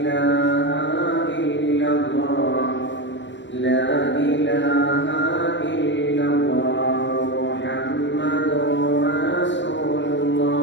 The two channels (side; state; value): right; late; 0.53 ms